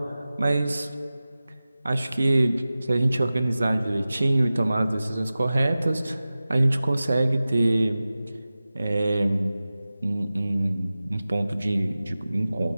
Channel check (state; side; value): inverted; both; correlation -0.96